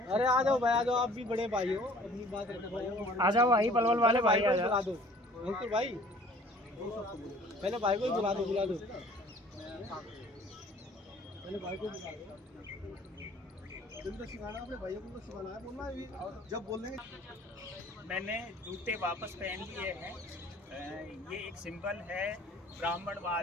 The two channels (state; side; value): normal; both; correlation 0.52